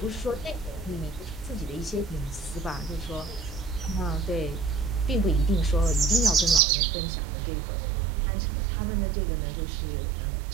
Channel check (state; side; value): drops out; left; at 6.6 s